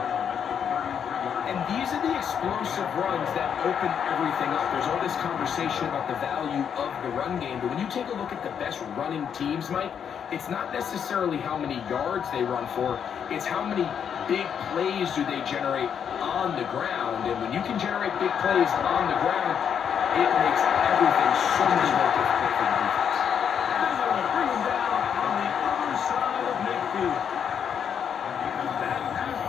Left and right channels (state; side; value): quieter; right; 7.9 dB